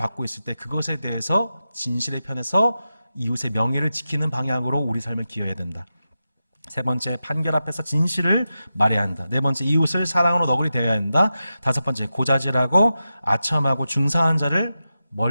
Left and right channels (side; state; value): both; inverted; correlation -0.91